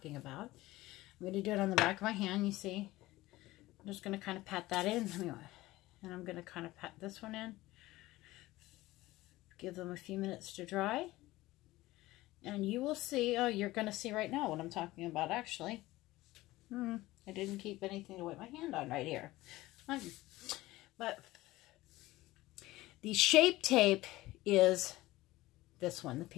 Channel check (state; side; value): quieter; right; 18.0 dB